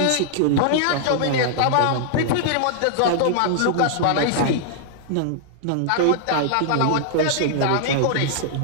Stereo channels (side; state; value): both; different; correlation -0.01